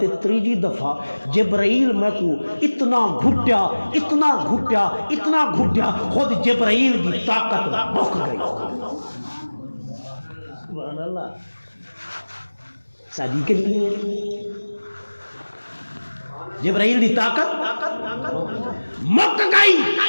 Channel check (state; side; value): inverted; both; correlation -1.00